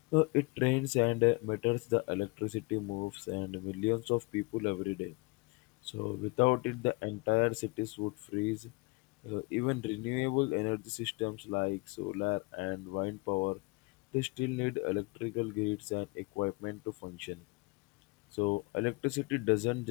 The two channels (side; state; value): right; quieter; 26.1 dB